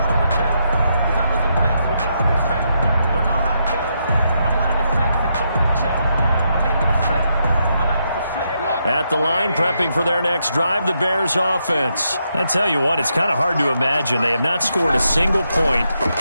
At the line, prepping for their next drive, the Bears offense. I tell you what, it's kind of hard to imagine. They have not scored a single point,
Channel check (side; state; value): both; inverted; correlation -0.80